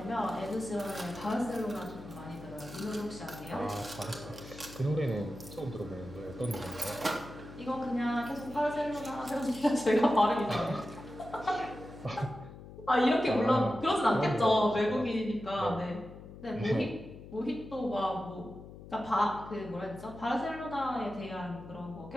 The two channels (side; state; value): left; noise; hum, 15 dB below the sound